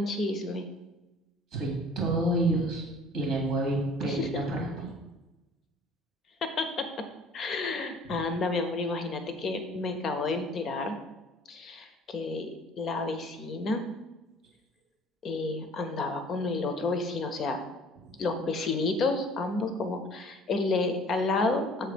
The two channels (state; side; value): normal; both; correlation 0.51